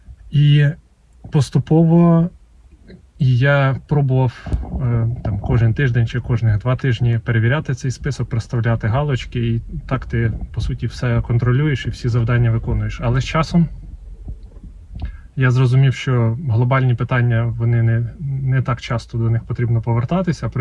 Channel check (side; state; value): both; identical; correlation 1.00